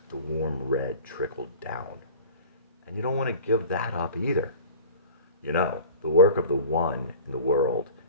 the warm red trickle down. And you don't want to give that up either. You know, the work of the one in the world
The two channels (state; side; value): inverted; both; correlation -0.40